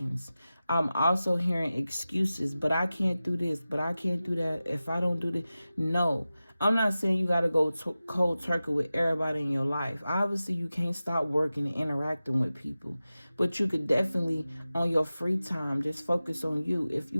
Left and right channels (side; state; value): both; inverted; correlation -0.95